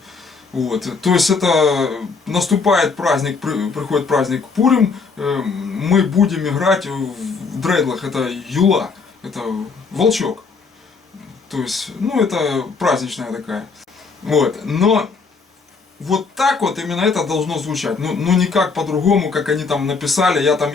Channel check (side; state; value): right; quieter; 4.8 dB